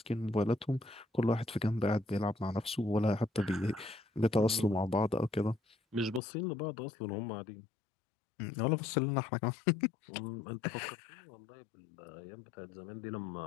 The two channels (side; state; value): right; drops out; at 6.2 s